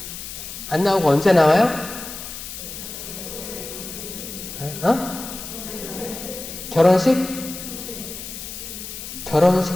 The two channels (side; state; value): left; noise; hiss, 10 dB below the sound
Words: 안 나오고 언제 나와요? 결혼식?